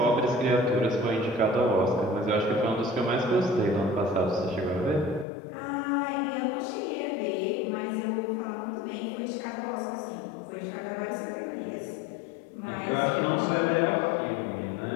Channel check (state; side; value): drops out; right; at 5.2 s